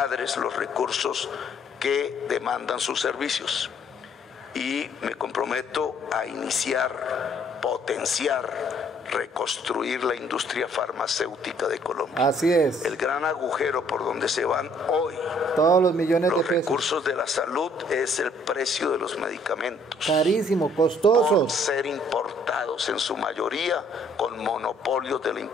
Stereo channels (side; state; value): both; normal; correlation 0.63